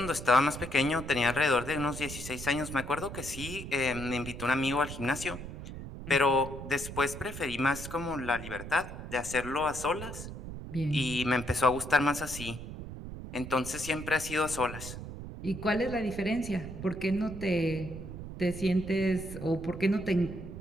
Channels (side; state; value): right; noise; rumble, 10 dB below the sound